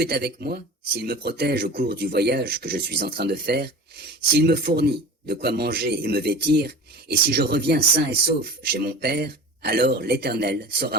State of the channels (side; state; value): both; normal; correlation 0.36